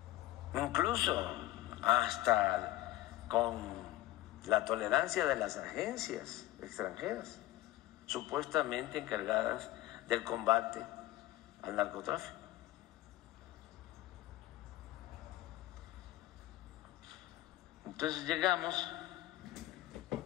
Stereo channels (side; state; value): right; quieter; 15.8 dB